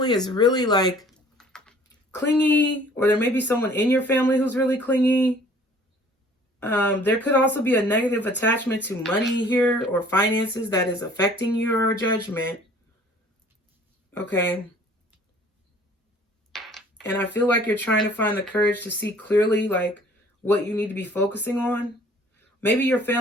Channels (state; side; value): normal; both; correlation 0.53